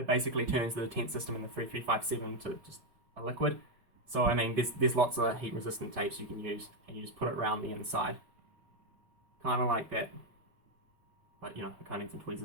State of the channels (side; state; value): left; late; 5.1 ms